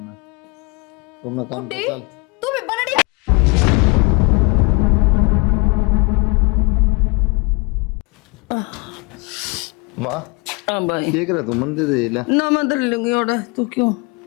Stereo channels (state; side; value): quieter; right; 28.5 dB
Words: तो अपना काम कर चल। तू भी बनड़ी माँ हाँ भाई क्या करे तू? मंदिर दे ले ना मैं दर लूंगी और तू क्यों